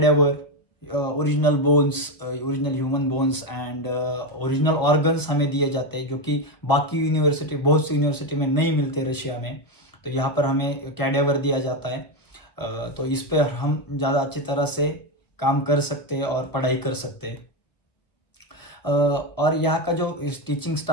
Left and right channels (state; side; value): late; right; 1.1 ms